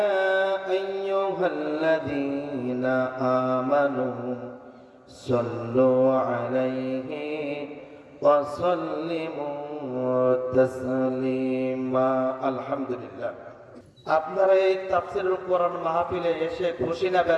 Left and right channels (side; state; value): both; identical; correlation 1.00